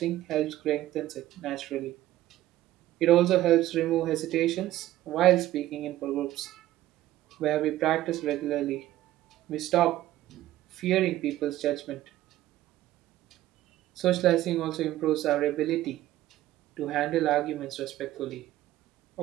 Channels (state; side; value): quieter; left; 14.7 dB